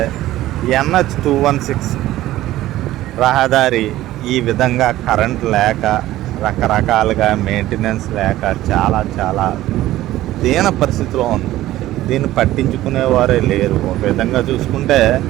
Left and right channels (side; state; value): left; quieter; 15.2 dB